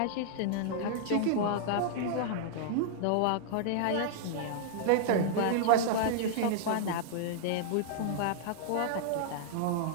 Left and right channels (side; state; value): both; different; correlation -0.01